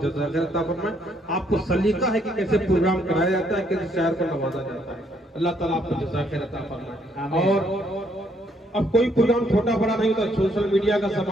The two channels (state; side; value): normal; both; correlation 0.70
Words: खैर अता फरमाए। आपको सलीका है कि कैसे प्रोग्राम कराया जाता है, कैसे शायर को नवाजा जाता है। अल्लाह ताला आपको जज़ा खैर अता फरमाए। और अब कोई प्रोग्राम छोटा बड़ा नहीं होता, सोशल मीडिया का